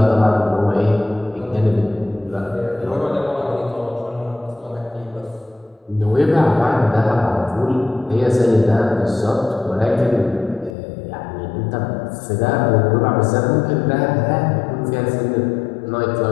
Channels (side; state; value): right; drops out; at 10.7 s